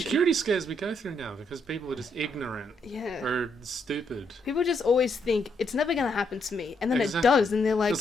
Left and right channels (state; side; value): normal; both; correlation 0.76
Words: security scares we go through now because people are just ignorant Yeah. or stupid. People just always think it's never gonna happen to me, and then Exactly. it does, and they're like, It's